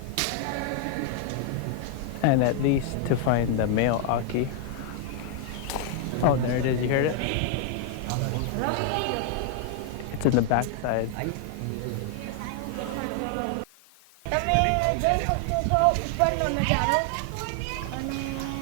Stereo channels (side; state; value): both; different; correlation 0.00